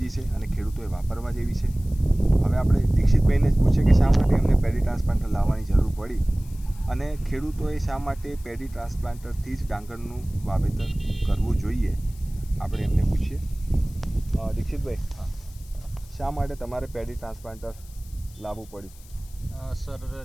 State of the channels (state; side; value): noise; left; hiss, 24 dB below the sound